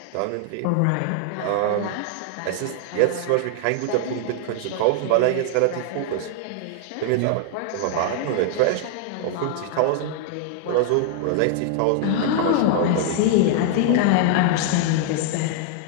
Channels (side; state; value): both; different; correlation 0.00